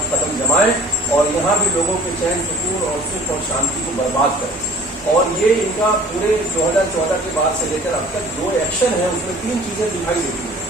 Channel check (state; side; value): normal; both; correlation 0.49